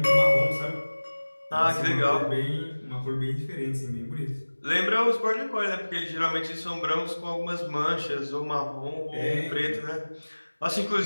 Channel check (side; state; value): both; inverted; correlation -1.00